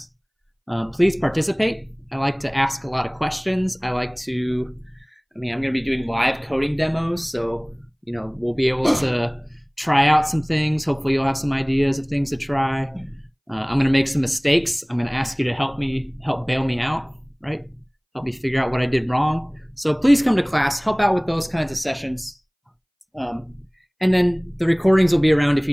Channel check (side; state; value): both; identical; correlation 1.00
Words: Please participate. I like to ask a lot of questions. I'm going to be doing live coding demos, so we'll be able to try out some things. Hopefully you'll have some ideas of things to try. I'm going to make some mistakes. I'm going to ask you to help bail me out, right? Help me figure out what I did wrong. So please come to class, help out with those kinds of sessions. And then the recordings will be around if